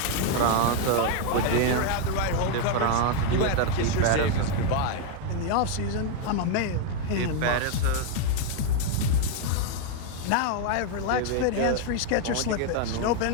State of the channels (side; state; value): both; different; correlation 0.01